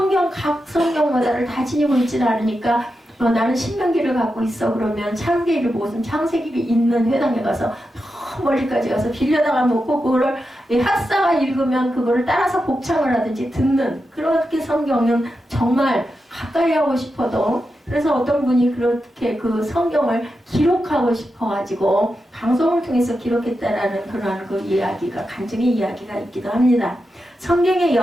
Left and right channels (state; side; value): normal; both; correlation 0.88